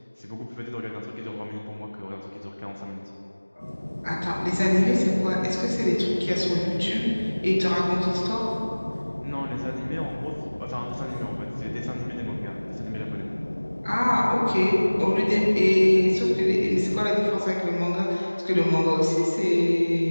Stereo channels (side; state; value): both; inverted; correlation -1.00